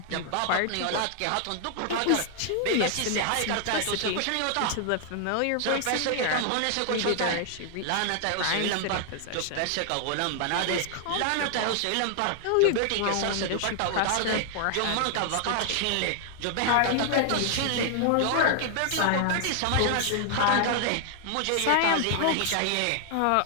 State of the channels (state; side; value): different; both; correlation 0.00